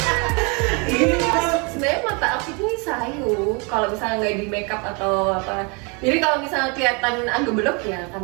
Ini sebenarnya mata aku ini sayu kalau misalnya nggak di makeup atau apa. Jadi kalau misalnya kelihatan agak belok ya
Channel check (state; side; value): quieter; left; 32.2 dB